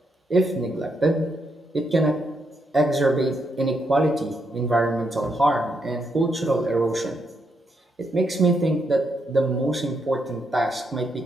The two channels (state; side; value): normal; both; correlation 0.79